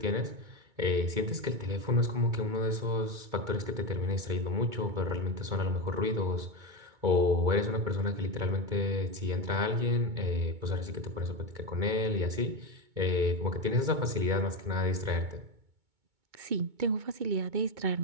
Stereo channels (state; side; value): late; left; 2.2 ms